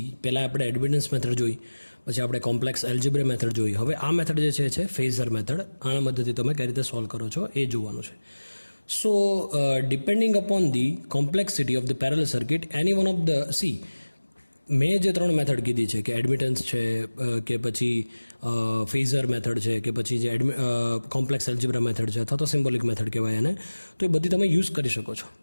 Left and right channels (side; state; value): both; inverted; correlation -1.00